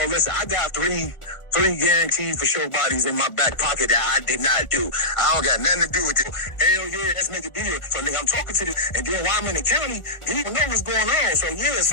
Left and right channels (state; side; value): late; right; 1.4 ms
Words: listen, I got three guaranteed for sure bodies in my back pocket that I did not do. I don't got nothing to do with it. Hell yeah, let's make a deal. So nigga, I'm talking to this, and then while I'm in the county, you don't know what's going on. So yeah,